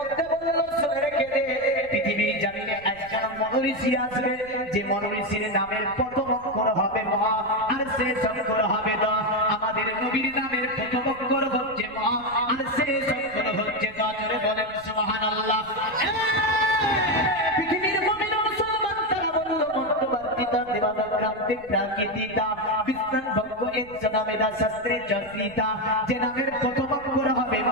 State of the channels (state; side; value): noise; right; rumble, 22 dB below the sound